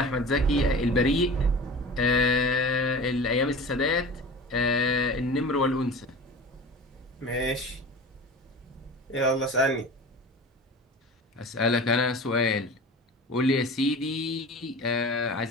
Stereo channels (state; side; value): normal; both; correlation 0.36